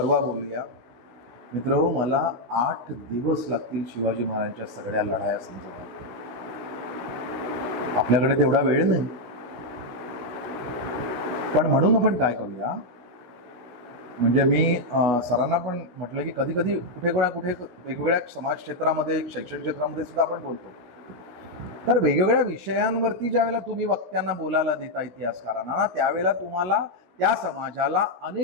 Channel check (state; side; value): late; left; 16 ms